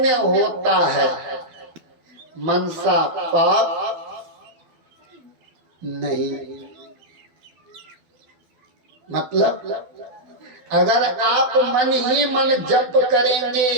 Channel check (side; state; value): left; late; 12 ms